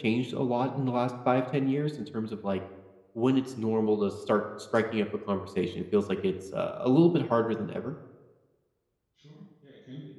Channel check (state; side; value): identical; both; correlation 1.00